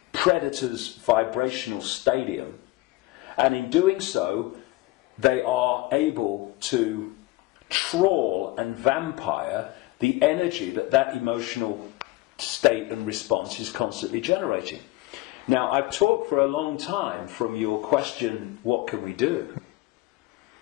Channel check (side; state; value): right; quieter; 18.9 dB